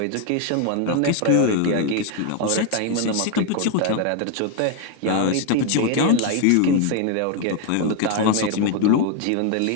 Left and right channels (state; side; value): different; both; correlation 0.01